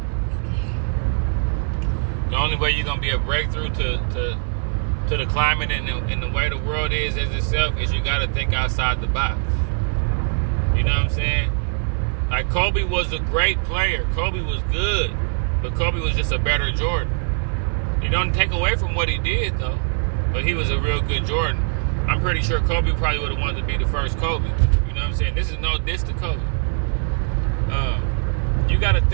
The only way you're gonna be a breakthrough to the climate and the way the world is as itself is you gotta think outside the box. You know what I'm saying? Like Kobe was a great player. Kobe was good, but Kobe was just a better Jordan. You don't take away from what he did though, but he was a real good Jordan. I'm pretty sure Kobe probably would have wanted to be the first Kobe. You know what I'm saying? This is no diss to Kobe. You got to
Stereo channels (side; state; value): left; silent; 58 dB below the other